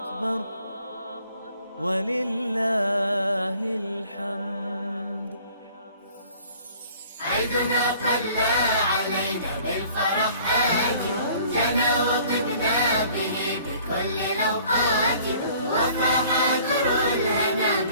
ولله الحمد. عيدنا طلع علينا بالفرح آتي، جنى وطبنا به بكل الأوقات، وفاح در الهنا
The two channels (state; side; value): inverted; both; correlation -0.53